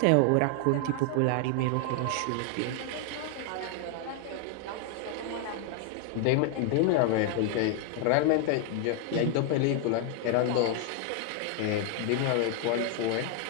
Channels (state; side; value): different; both; correlation 0.00